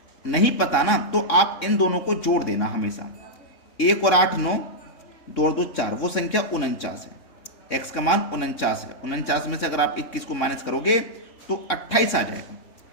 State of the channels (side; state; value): right; late; 3.6 ms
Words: नहीं पता ना, तो आप इन दोनों को जोड़ देना हमेशा। 1 और 8 9, 2 और 2 4, वो संख्या 49 है। x का मान 49 है। 49 में से अगर आप 21 को माइनस करोगे तो 28 आ जाएगा।